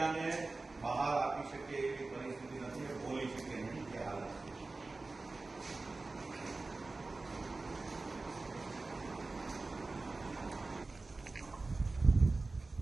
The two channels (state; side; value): quieter; left; 3.5 dB